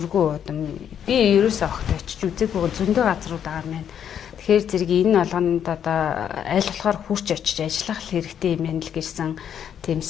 удам. Би ерөөсөө огт очиж үзээгүй зөндөө газрууд байгаа мэн. Тэгэхээр зэрэг энэ болгонд одоо аль болохоор хурч очиж ажиллах хэрэгтэй юм байна л гэсэн тийм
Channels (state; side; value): quieter; right; 8.9 dB